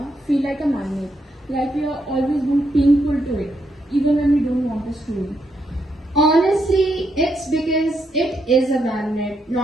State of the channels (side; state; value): both; normal; correlation 0.79